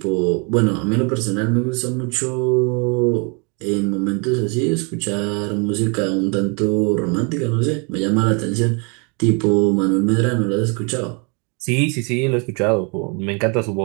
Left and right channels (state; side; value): quieter; left; 33.9 dB